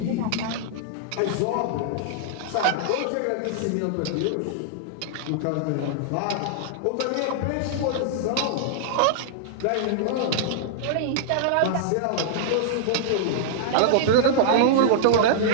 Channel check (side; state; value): both; different; correlation -0.01